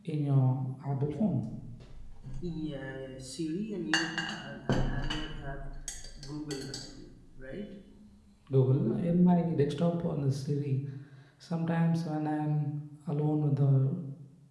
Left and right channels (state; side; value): identical; both; correlation 1.00